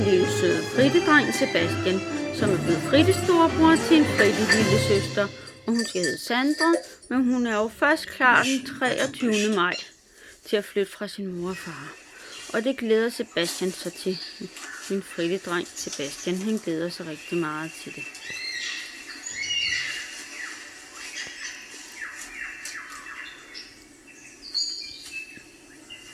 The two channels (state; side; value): identical; both; correlation 1.00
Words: lille søde frittedreng Sebastian, som er blevet frittestorebror til en fritte lille søster, og hun skal hedde Sandra, men hun er jo først klar den 23. maj til at flytte fra sin mor og far. Og det glæder Sebastian sig til. Min frittedreng Sebastian, han glæder sig rigtig meget til det.